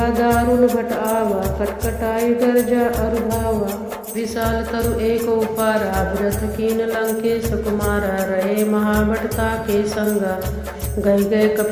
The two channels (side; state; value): both; identical; correlation 1.00